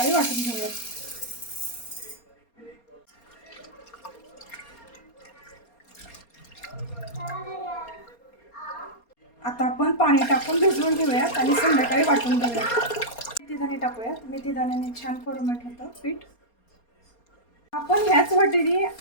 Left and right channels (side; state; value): right; late; 4.3 ms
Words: वाटून घेऊयात. आता आपण पाणी टाकून भिजवून ठेवूयात आणि संध्याकाळी वाटून घेऊयात. मेथीदाणे टाकूयात. मेथीदाण्याने छान फॉर्मेट होतं पीठ. आपण ह्याच वाटीने